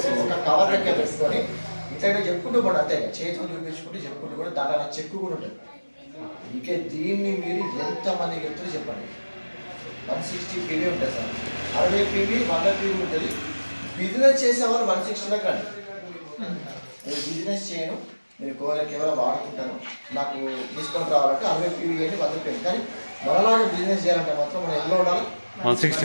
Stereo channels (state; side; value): inverted; both; correlation -1.00